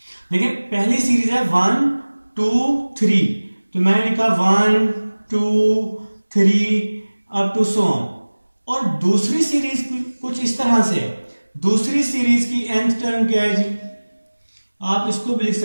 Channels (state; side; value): inverted; both; correlation -1.00